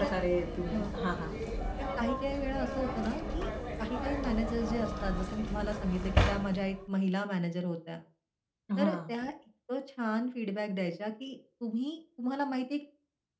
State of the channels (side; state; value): both; identical; correlation 1.00